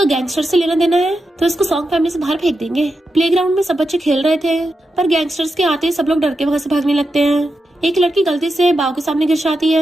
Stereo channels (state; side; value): normal; both; correlation 0.88